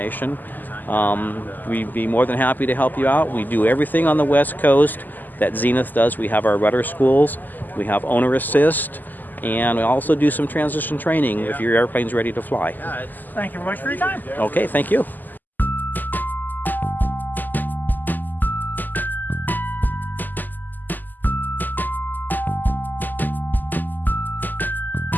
We'd be more than happy to help you out. We do everything on the West Coast that Zenith does. We have our rudder schools, we have owner assist, and we also do some transition training if your airplane's ready to fly. Thank you very much for your time. Okay, thank you.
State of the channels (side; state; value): right; late; 0.086 ms